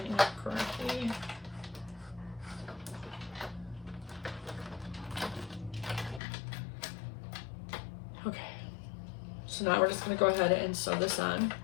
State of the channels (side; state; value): right; drops out; at 6.2 s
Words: Okay, so now we're just going to go ahead and sew this on.